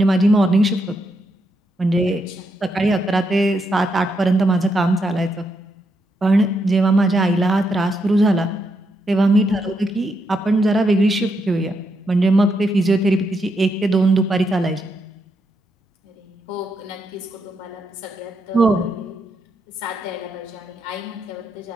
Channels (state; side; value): normal; both; correlation 0.80